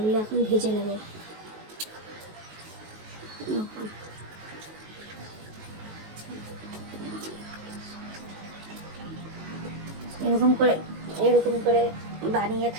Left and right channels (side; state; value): left; late; 19 ms